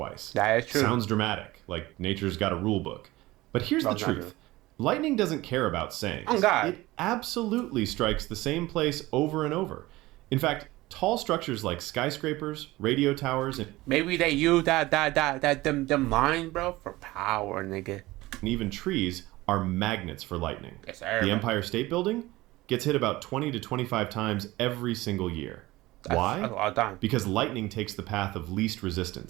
That is true. Sounds dramatic, like nature's got a rule book. But here's No, the it's not truth. Lightning doesn't care about sayings. Oh, God. It absolutely strikes the same place over and over. In fact, tall structures like skyscrapers, radio towers, and Maybe they use them lines, bro, for power, nigga. even trees are magnets for lightning. Yes, sir. The Empire State Building gets hit about 20 to 25 times every single year. Why? That's a lot of time. Because lightning takes the path of least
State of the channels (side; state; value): left; quieter; 19.0 dB